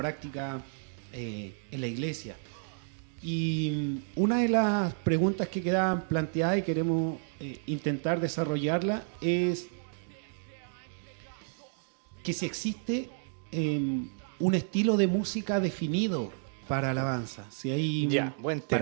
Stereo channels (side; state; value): left; silent; digital silence